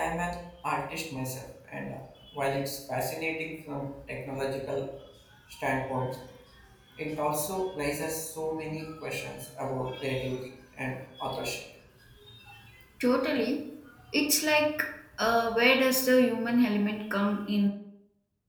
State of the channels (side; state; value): both; identical; correlation 1.00